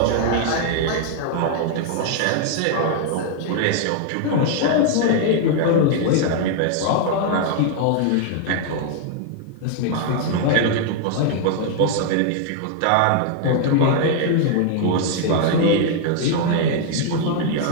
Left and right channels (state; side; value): different; both; correlation 0.00